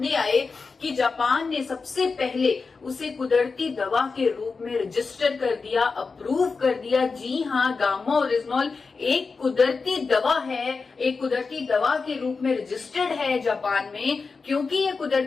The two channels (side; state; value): right; quieter; 4.6 dB